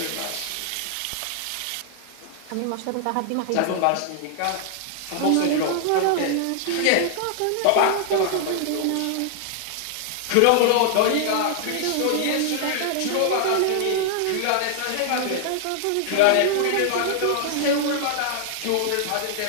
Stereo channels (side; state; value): both; different; correlation -0.01